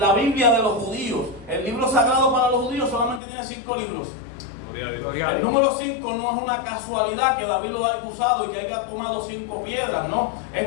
Biblia de los judíos. El libro sagrado para los judíos solamente tiene 5 libros. El número 5 no es una casualidad que David lo haya usado y que haya tomado 5 piedras, no.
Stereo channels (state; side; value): drops out; right; at 3.2 s